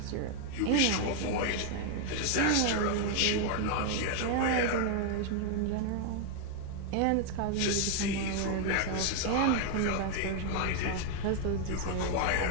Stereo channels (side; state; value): both; different; correlation 0.00